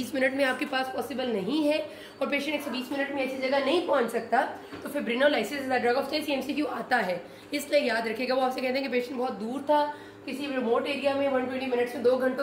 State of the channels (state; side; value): identical; both; correlation 1.00